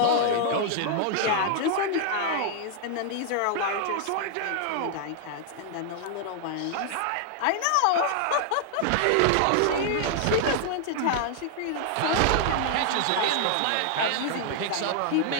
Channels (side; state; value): both; different; correlation 0.00